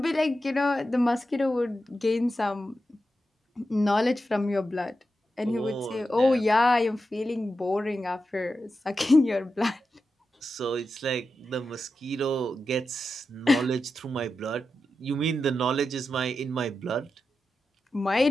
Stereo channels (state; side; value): normal; both; correlation 0.90